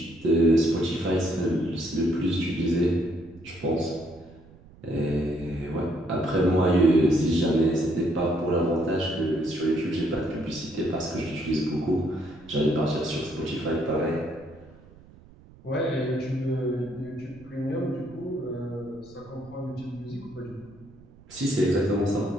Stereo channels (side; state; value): right; noise; rumble, 23 dB below the sound